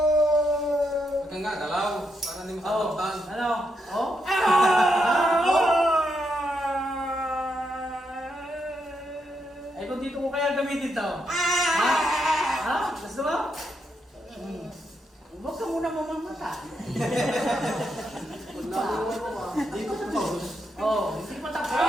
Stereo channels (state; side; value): normal; both; correlation 0.80